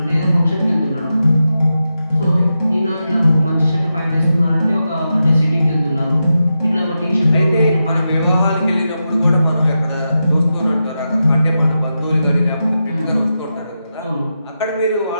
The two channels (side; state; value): both; inverted; correlation -0.89